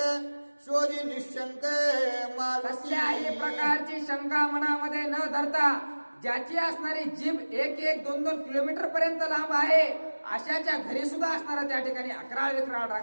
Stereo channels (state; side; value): inverted; both; correlation -1.00